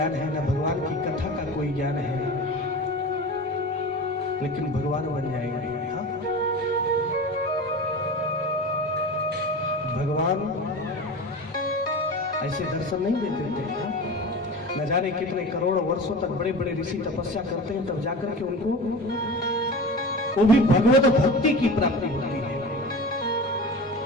है, ना भगवान की कथा का कोई ज्ञान है, लेकिन भगवान बन जाएगा। भगवान ऐसे दर्शन नहीं देते थे। न जाने कितने करोड़ों वर्षों तक बड़े बड़े ऋषि तपस्या करते हैं, तब जाकर के उनको वो भी भगवत भक्ति की प्राप्ति होती है।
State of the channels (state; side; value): normal; both; correlation 0.32